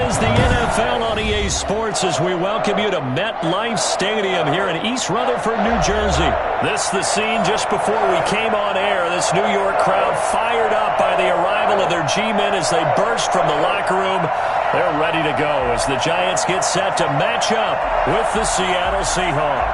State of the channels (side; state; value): both; identical; correlation 1.00